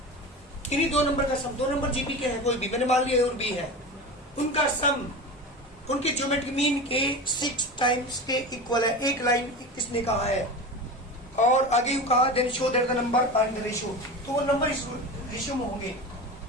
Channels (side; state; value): both; normal; correlation 0.28